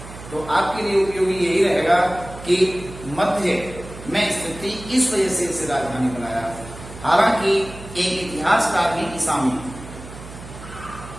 तो आपके लिए उपयोगी यही रहेगा कि मध्य में स्थित थी, इस वजह से इसे राजधानी बनाया। हालांकि एक इतिहासकार हैं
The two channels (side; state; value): right; noise; hum, 14 dB below the sound